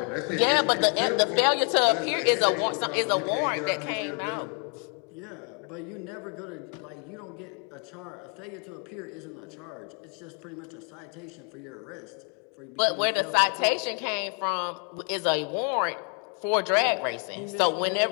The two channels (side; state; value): right; quieter; 38.8 dB